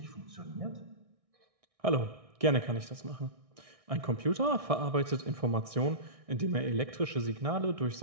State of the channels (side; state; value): left; late; 1.6 ms